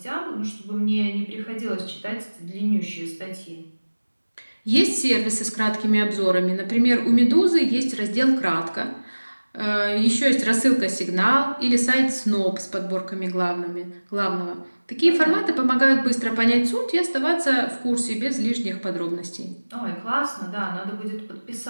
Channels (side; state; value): both; inverted; correlation -1.00